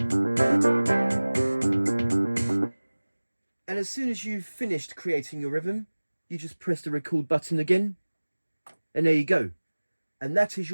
And as soon as you've finished creating your rhythm, you just press the record button again, and there you go. And that is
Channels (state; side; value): inverted; both; correlation -1.00